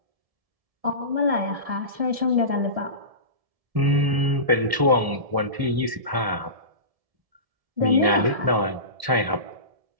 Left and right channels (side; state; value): left; late; 1.7 ms